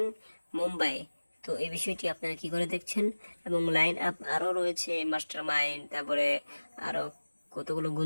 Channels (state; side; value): inverted; both; correlation -1.00